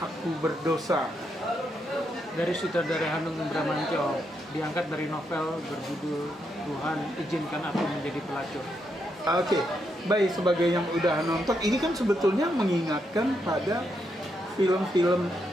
berdosa. Dari sutradara Hanung Bramantyo, diangkat dari novel berjudul Tuhan izinkan aku menjadi pelacur. Oke, baik, sebagai yang udah nonton, ini kan sebetulnya mengingatkan pada film-film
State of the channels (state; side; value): normal; both; correlation 0.80